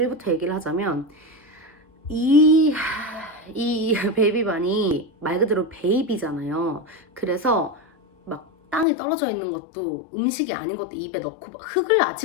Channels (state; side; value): drops out; right; at 8.8 s